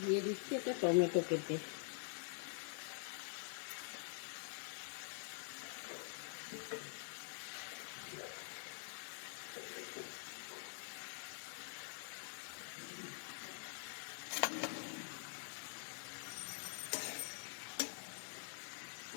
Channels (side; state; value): right; silent; digital silence